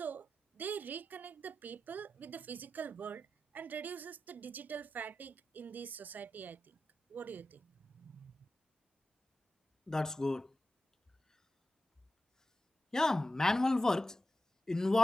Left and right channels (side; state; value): both; normal; correlation 0.93